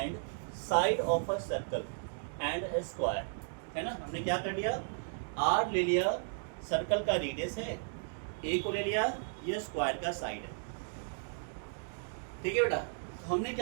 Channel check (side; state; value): left; silent; digital silence